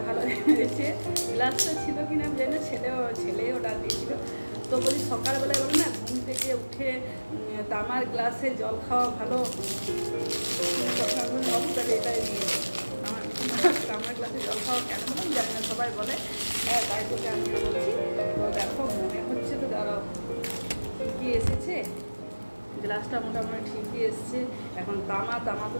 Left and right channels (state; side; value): inverted; both; correlation -1.00